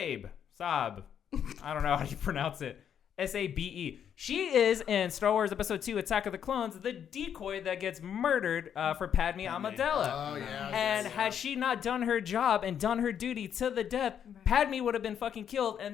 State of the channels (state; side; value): quieter; right; 8.7 dB